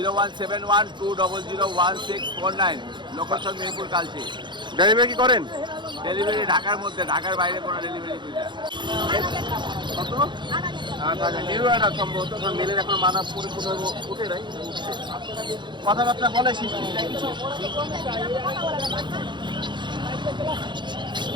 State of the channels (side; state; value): left; late; 0.23 ms